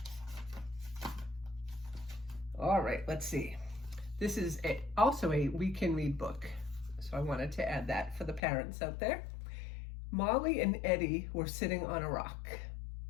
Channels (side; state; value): right; drops out; at 8.4 s